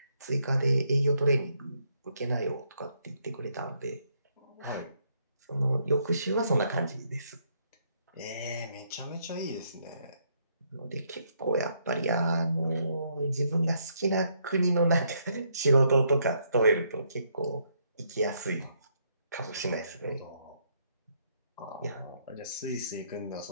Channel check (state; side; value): inverted; both; correlation -0.73